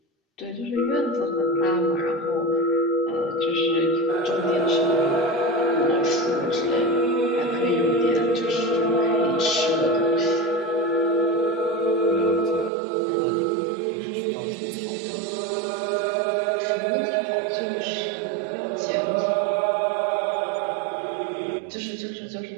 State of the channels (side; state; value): left; drops out; at 12.7 s